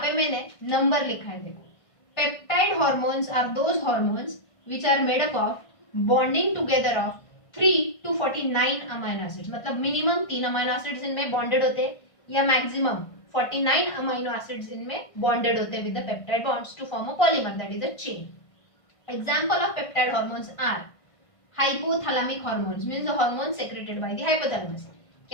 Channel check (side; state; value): right; late; 1.5 ms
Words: पे मैंने number लिखा है देखो. Peptide hormones are those hormones which are made up of bonding together of 3 to 49 amino acids. मतलब minimum 3 amino acids इनमें bonded होते हैं या maximum 49 amino acids इनमें bonded होते हैं with the peptide bonds to form a polymer, that is a chain. Example of peptide hormones are hypothalamic hormones, means the hormones secreted by the hypothalamus.